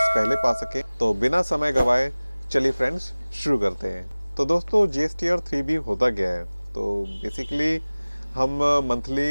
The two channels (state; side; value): inverted; both; correlation -1.00